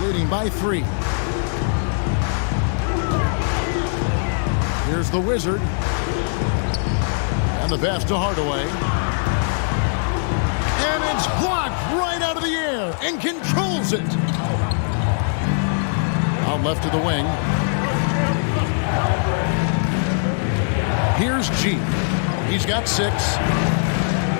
leading by 3. Here's the Wizard. And the pass to Hardaway. And it's blocked right out of the air and controls it. Out left to the wing. Here's G. He's got 6.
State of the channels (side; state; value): right; silent; digital silence